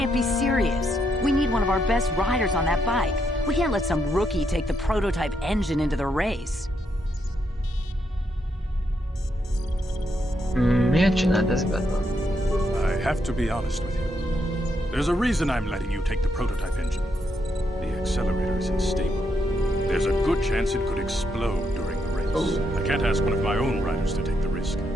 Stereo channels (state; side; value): normal; both; correlation 0.78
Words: be serious. We need one of our best riders on that bike. We can't let some rookie take the prototype engine into the race. Miért csináld ezt, Batman? I have to be honest with you. There's a reason I'm letting you take the prototype engine. The accelerator is unstable. There's a good chance it could explode during the race. I can't ask one of my own riders to take the risk.